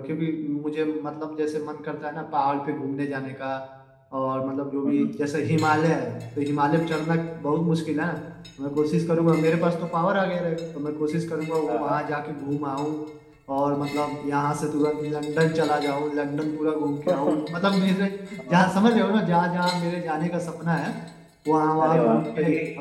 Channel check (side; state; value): both; identical; correlation 1.00